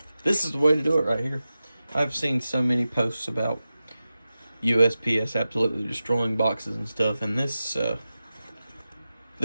This is the way to do it right here. I've seen so many posts about USPS absolutely destroying boxes and stuff, and this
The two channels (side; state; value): both; inverted; correlation -0.93